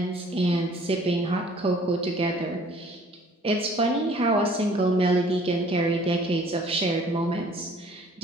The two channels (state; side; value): normal; both; correlation 0.55